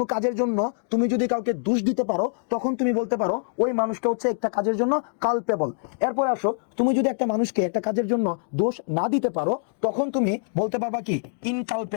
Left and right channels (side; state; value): right; silent; 58 dB below the other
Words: কাজের জন্য তুমি যদি কাউকে দোষ দিতে পারো, তখন তুমি বলতে পারো ওই মানুষটা হচ্ছে একটা কাজের জন্য কালপেবল। এরপরে আসো, তুমি যদি একটা মানুষকে একটা কাজের জন্য দোষ না দিতে পারো, তখন তুমি বলতে পারবা কি?